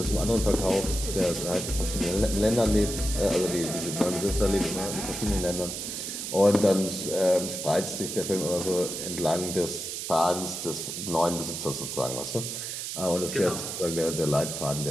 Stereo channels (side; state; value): right; noise; hiss, 5 dB below the sound